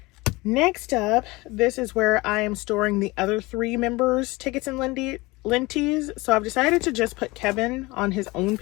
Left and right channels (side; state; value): right; quieter; 22.5 dB